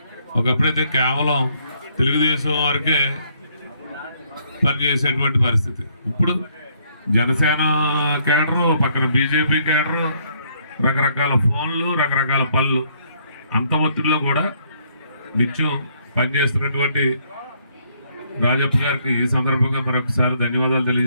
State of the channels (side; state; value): both; inverted; correlation -0.69